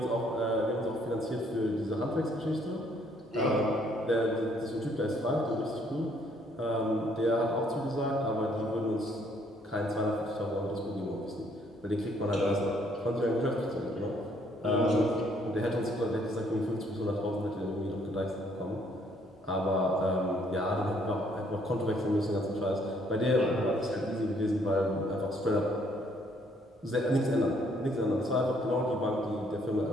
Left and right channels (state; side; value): normal; both; correlation 0.66